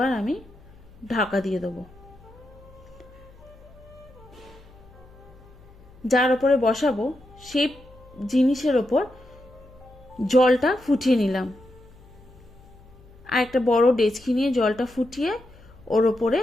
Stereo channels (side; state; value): left; noise; hum, 24 dB below the sound